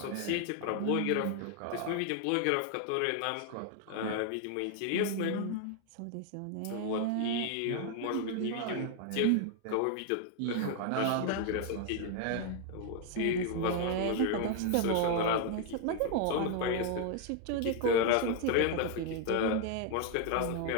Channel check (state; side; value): different; both; correlation 0.00